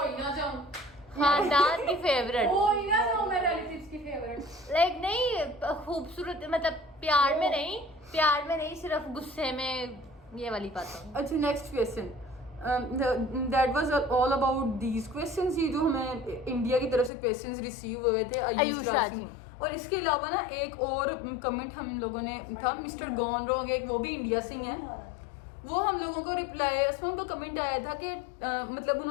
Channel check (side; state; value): right; drops out; at 17.1 s